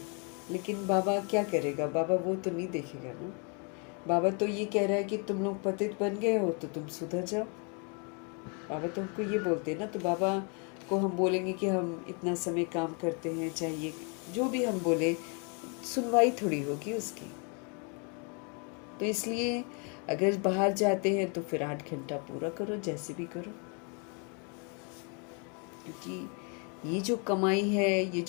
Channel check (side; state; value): right; quieter; 36.3 dB